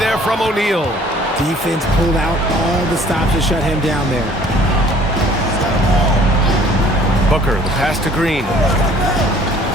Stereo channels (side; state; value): both; normal; correlation 0.55